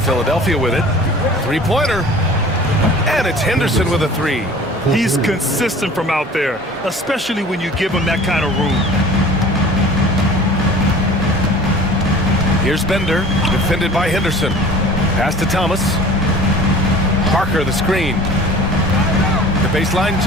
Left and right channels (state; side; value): normal; both; correlation 0.44